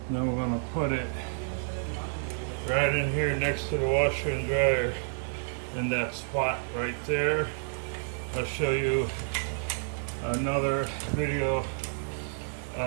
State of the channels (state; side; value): silent; left; digital silence